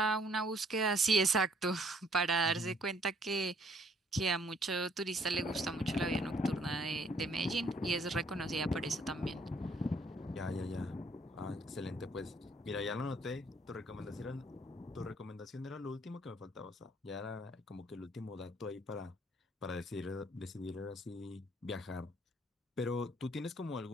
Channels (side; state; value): both; normal; correlation 0.64